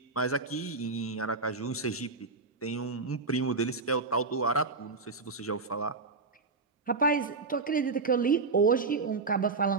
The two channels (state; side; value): quieter; left; 4.0 dB